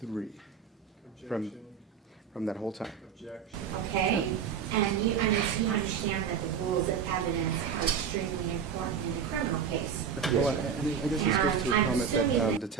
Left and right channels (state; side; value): quieter; left; 7.2 dB